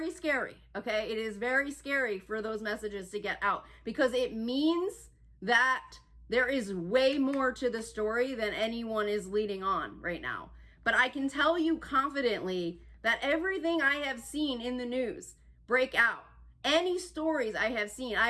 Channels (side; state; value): both; identical; correlation 1.00